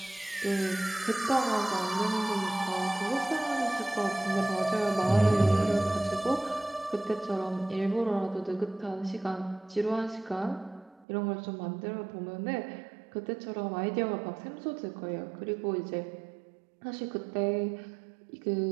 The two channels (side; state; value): left; drops out; at 11.1 s